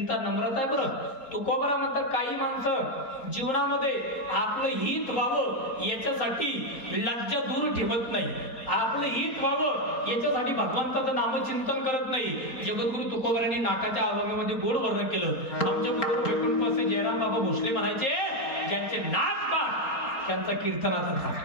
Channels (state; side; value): late; right; 4.3 ms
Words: नम्रता आहे बरं. तुकोबारा म्हणतात काही माणसं जीवनामध्ये आपलं हित व्हावं याच्यासाठी लज्जा दूर ठेवत नाही. आपलं हित व्हावं याच्यासाठी भगवंताचं नामचिंतन करत नाही. जगद्गुरु तुकोबारांनी नाटाच्या अभंगामध्ये गोड वर्णन केलं. आमच्या गुरु वैकुंठपासे जयराम बाबा भोसले म्हणायचे, ज्यांचे नाक पाठ त्यांचा कीर्तनाचा